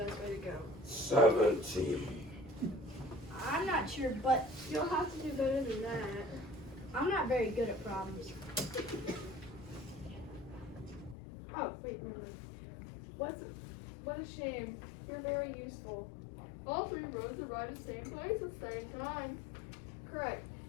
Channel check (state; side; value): drops out; right; at 11.2 s